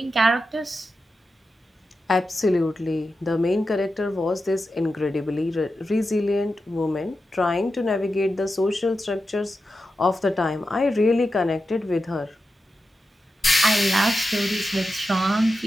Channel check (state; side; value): normal; both; correlation 0.90